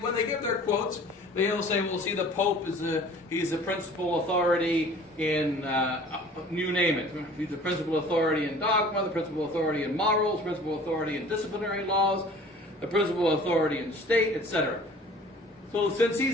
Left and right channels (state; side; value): normal; both; correlation 0.48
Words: they give their quotes, they'll say, well, see, the Pope he's the principal authority in, you name it. He's the principal authority in dogma, the principal authority in morals, principal authority in disciplinary laws, the principal authority in state, etc. So since